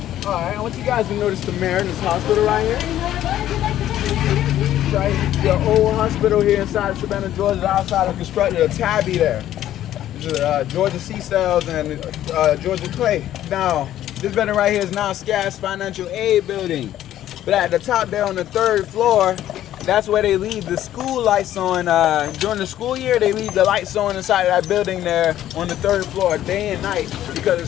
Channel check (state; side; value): quieter; right; 12.4 dB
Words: Alright, I want you guys to notice the Mariners Hospital right here. Right, the old hospital here inside of Savannah, Georgia, outside of constructed a tabby there. This is Georgia Sea Cells and Georgia Clay. Now, this building right here is now SCAS Financial Aid Building. But at the top there on the 3rd floor, that's where they leave the school lights on. During the school year, they leave the lights on inside of that building there on the 3rd floor day and night because